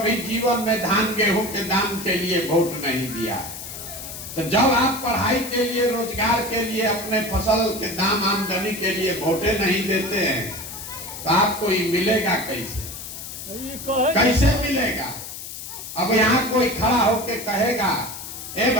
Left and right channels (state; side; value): noise; left; hiss, 10 dB below the sound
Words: जीवन में धान गेहूं के दाम के लिए वोट नहीं दिया। तो जब आप पढ़ाई के लिए, रोजगार के लिए, अपने फसल के दाम आमदनी के लिए वोटे नहीं देते हैं तो आपको ये मिलेगा कैसे? कैसे मिलेगा? अब यहाँ कोई खड़ा होके कहेगा ए